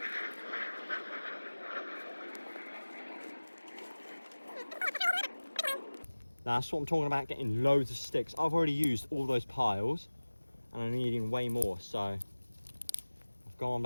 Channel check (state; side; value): inverted; both; correlation -1.00